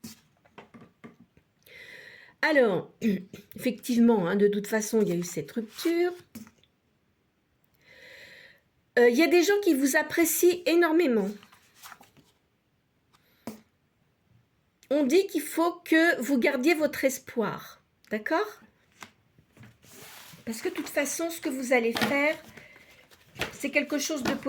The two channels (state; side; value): identical; both; correlation 1.00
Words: Alors, effectivement, hein, de toute façon, il y a eu cette rupture. Il y a des gens qui vous apprécient énormément. On dit qu'il faut que vous gardiez votre espoir, d'accord? Parce que de toute façon, ce que vous allez faire, c'est quelque chose de